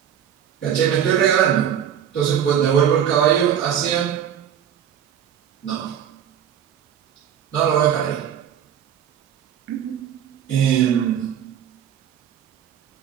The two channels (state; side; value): quieter; left; 9.3 dB